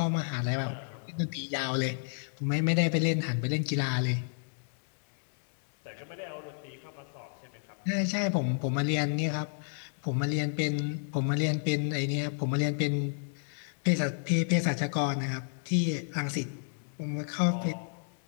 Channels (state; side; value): silent; right; digital silence